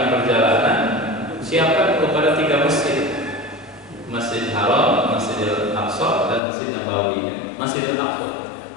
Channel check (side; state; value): right; drops out; at 6.4 s